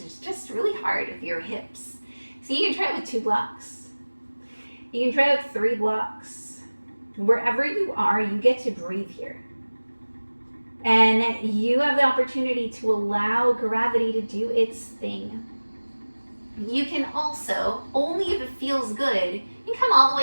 is just really hard with your hips. So you can try it with 2 blocks. You can try it with 3 blocks. Wherever you are, you get to breathe here. And you have the opportunity to allow gravity to do its thing. You can also, only if it feels good, you can come all the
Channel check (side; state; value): both; inverted; correlation -1.00